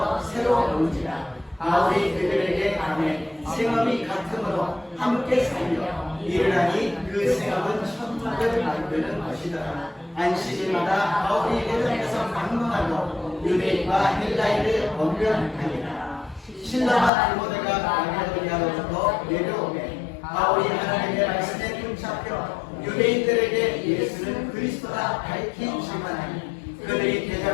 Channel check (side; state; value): right; drops out; at 17.1 s